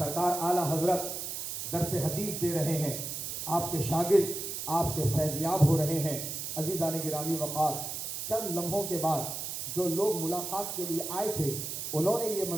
आला हजरत दरस हदीस दे रहे हैं, आपके शागिर्द आपसे फैज़याब हो रहे हैं। अजीज़ान गिरामी वक़ार, चंद लम्हों के बाद जो लोग मुलाकात के लिए आए थे उन्होंने ये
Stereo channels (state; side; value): noise; right; hiss, 5 dB below the sound